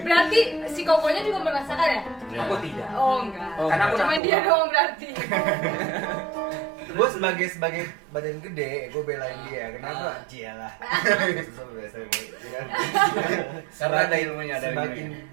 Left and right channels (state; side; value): drops out; left; at 4.2 s